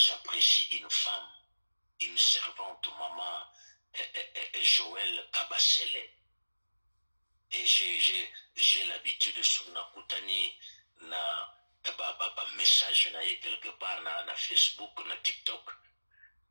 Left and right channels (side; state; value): both; inverted; correlation -1.00